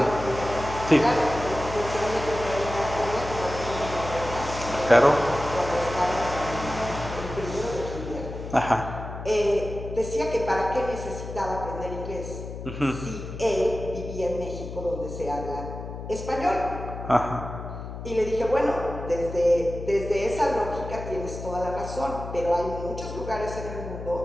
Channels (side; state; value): left; noise; hum, 9 dB below the sound